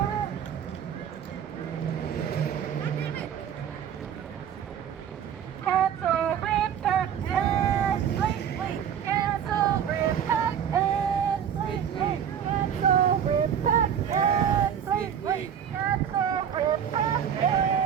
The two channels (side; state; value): left; quieter; 8.6 dB